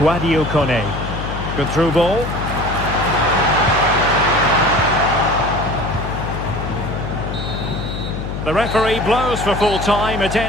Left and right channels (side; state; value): left; noise; hum, 6 dB below the sound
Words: Kone. Good through ball. The referee blows for full time. It